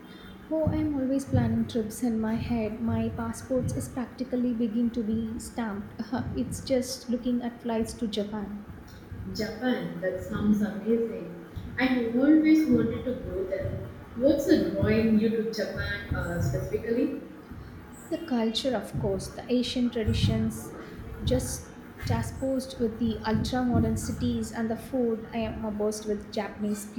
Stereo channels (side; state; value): both; identical; correlation 1.00